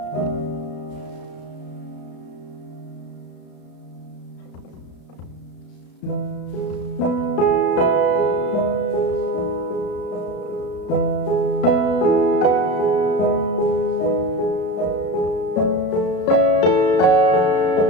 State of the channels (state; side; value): late; right; 34 ms